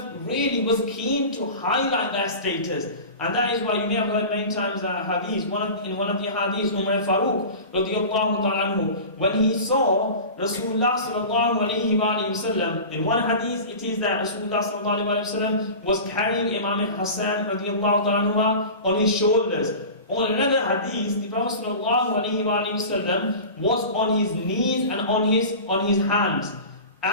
really was keen to highlight their status. And that is why you may have heard many times hadith, in one of the hadiths, Umar Farooq radiallahu ta'ala anhu, when he saw Rasulullah sallallahu alayhi wa sallam, in one hadith it is that Rasulullah sallallahu alayhi wa sallam was carrying Imam Hassan radiallahu ta'ala anhu on his shoulders. On another hadith, the Prophet sallallahu alayhi wa sallam was on his knees and on his hands.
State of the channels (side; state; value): both; inverted; correlation -0.34